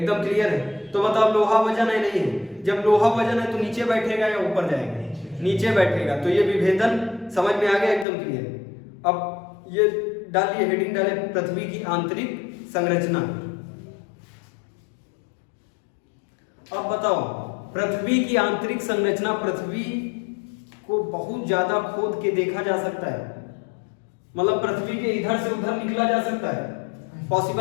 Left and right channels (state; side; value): drops out; right; at 8.1 s